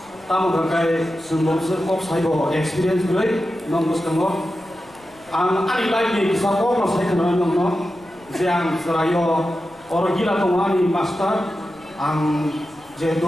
tamu kai semua kok saibo experience gue nonggus kamu ani lagi bisa kok saya kenal nongno yang serayo orang gila tongani master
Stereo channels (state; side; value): noise; left; rumble, 29 dB below the sound